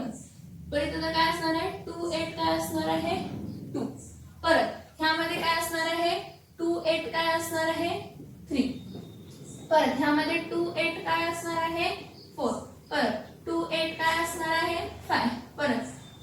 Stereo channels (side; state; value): both; identical; correlation 1.00